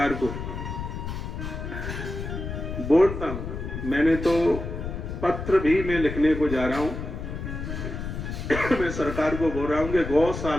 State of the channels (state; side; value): noise; left; rumble, 6 dB below the sound